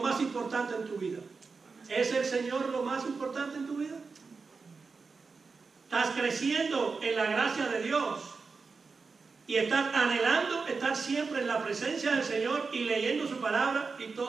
más importante en tu vida. ¿Es el Señor lo más importante en tu vida? ¿Estás creciendo en la gracia de Dios y estás anhelando estar siempre en la presencia del Señor y leyendo su palabra y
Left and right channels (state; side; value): quieter; left; 4.6 dB